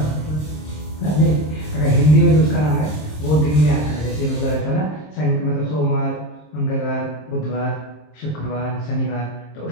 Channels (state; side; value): late; right; 26 ms